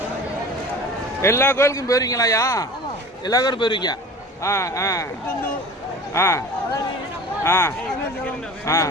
எல்லா கோயிலுக்கும் போயிருவீங்களாயா? எல்லா கோயிலும் போயிருவீங்க? ஆ ஆ ஆ ஆ ஆ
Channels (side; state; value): both; normal; correlation 0.39